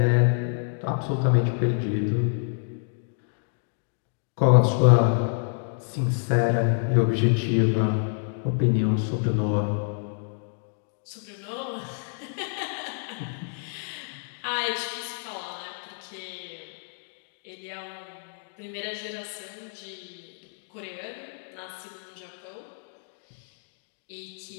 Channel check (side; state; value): right; silent; digital silence